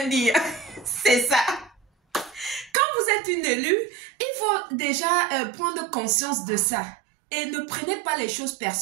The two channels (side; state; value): left; drops out; at 2.7 s